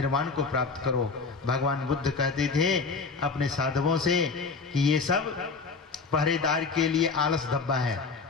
को प्राप्त करो। भगवान बुद्ध कहते थे अपने साधवों से कि ये सब पहरेदार के लिए आलस धब्बा है।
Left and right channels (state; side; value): quieter; right; 4.6 dB